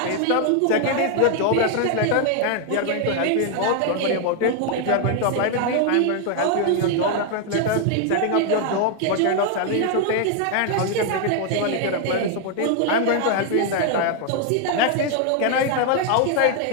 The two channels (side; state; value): both; different; correlation 0.00